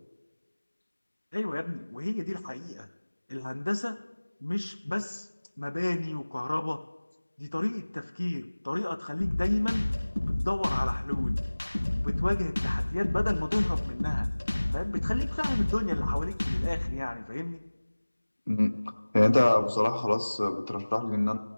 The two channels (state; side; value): inverted; both; correlation -1.00